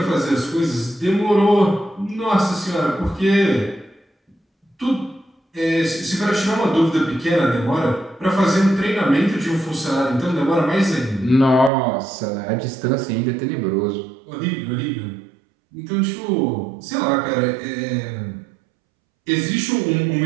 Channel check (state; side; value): drops out; left; at 11.7 s